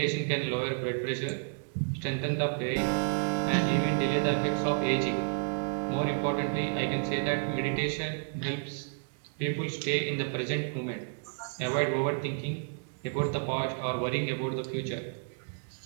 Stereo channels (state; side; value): silent; left; digital silence